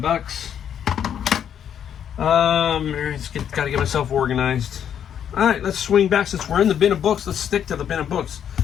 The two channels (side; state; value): right; quieter; 9.0 dB